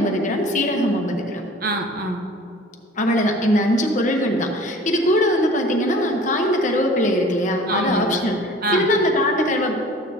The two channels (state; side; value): normal; both; correlation 0.46